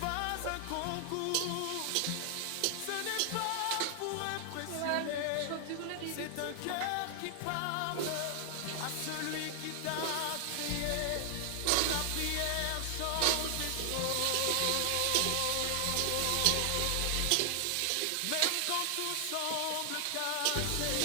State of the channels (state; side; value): different; both; correlation 0.00